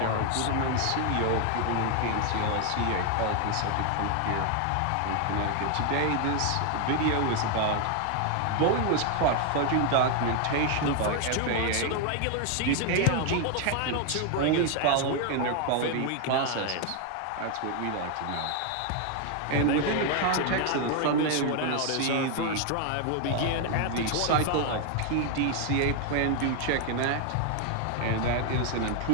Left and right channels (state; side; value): different; both; correlation 0.01